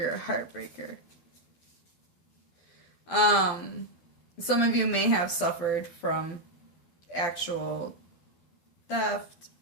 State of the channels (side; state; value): right; late; 12 ms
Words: a heartbreaker. Some of you may have suffered from actual theft.